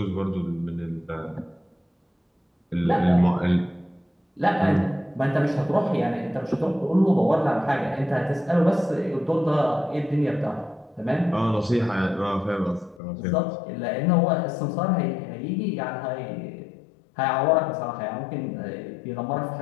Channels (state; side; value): drops out; right; at 13.0 s